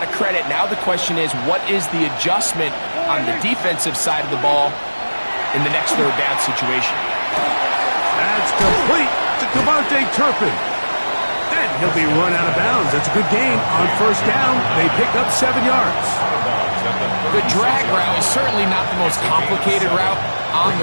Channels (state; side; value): inverted; both; correlation -1.00